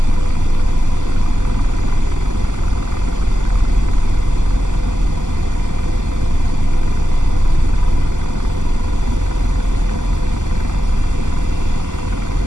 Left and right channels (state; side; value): late; left; 0.87 ms